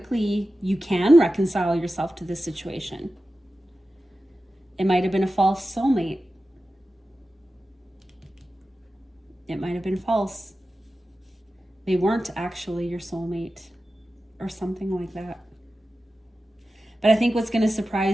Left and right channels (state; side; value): normal; both; correlation 0.93